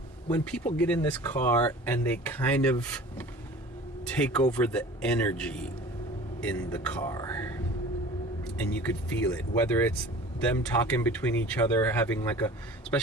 people get in this car and they kind of take over the energy in the car, and you could feel it, whether it's them talking between each other, having like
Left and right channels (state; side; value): normal; both; correlation 0.42